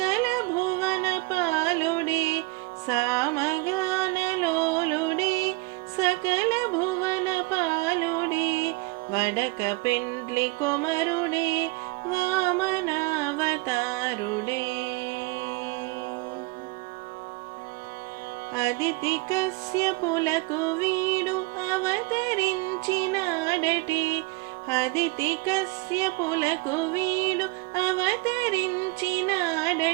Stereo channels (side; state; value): left; quieter; 25.3 dB